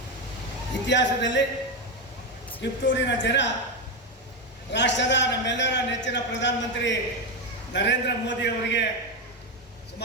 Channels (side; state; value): both; normal; correlation 0.10